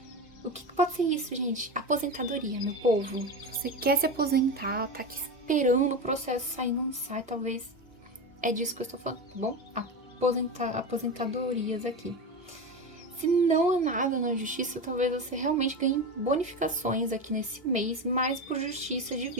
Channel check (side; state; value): both; normal; correlation 0.21